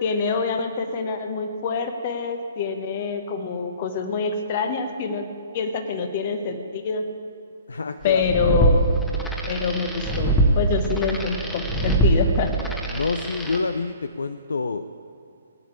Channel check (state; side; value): inverted; both; correlation -0.44